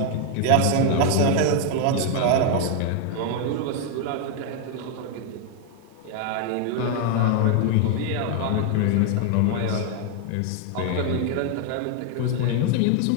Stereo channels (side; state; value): both; different; correlation 0.00